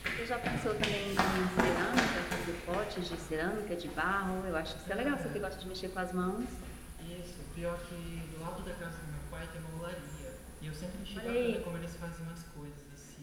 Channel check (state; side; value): identical; both; correlation 1.00